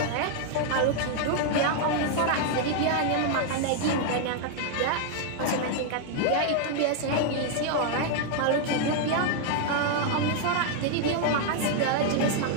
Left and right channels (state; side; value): different; both; correlation 0.00